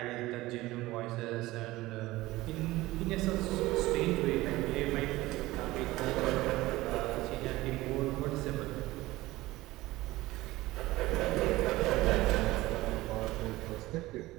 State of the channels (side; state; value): left; quieter; 18.4 dB